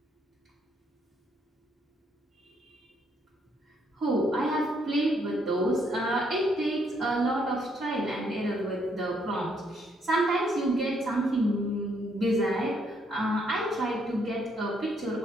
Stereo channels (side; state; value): both; normal; correlation 0.71